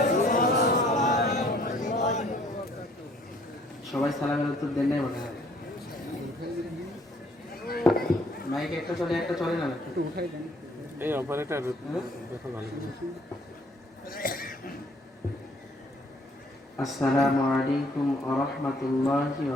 সবাই সালামের উত্তর দেন নাই মনে হয়। মাইক একটা চলে না একটু উঠাই দেন। এই অপারেটর দেখো ভালো করে। আসসালামু আলাইকুম ওয়া রাহমাতুল্লাহি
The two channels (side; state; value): both; normal; correlation 0.61